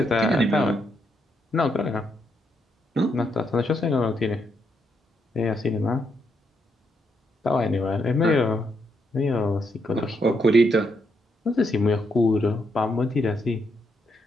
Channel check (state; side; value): normal; both; correlation 0.78